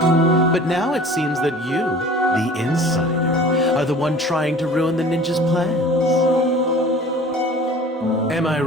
But now it seems that you, the insider, are the one trying to ruin the ninja's plans. Am I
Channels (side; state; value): both; normal; correlation 0.45